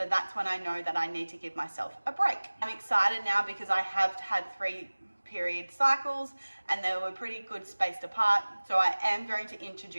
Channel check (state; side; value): inverted; both; correlation -1.00